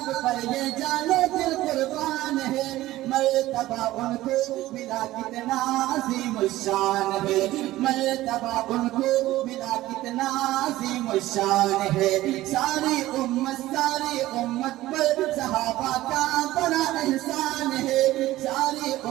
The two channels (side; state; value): left; quieter; 16.2 dB